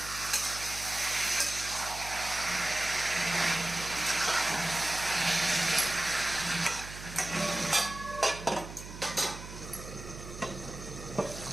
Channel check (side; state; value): right; noise; hum, 12 dB below the sound